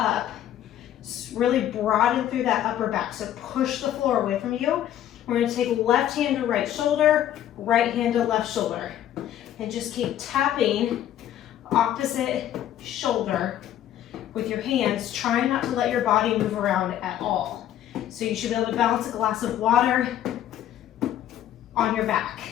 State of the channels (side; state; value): right; quieter; 11.6 dB